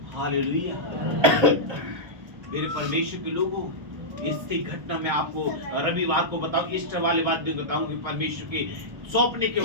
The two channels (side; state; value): left; late; 1.3 ms